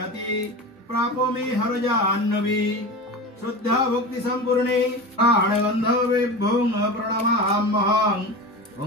प्रापो मे हरजाह्नवी। श्रद्धा भक्ति संपूर्णे प्राणगंधवेभ्यों प्रणमाम्यहं।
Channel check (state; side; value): normal; both; correlation 0.28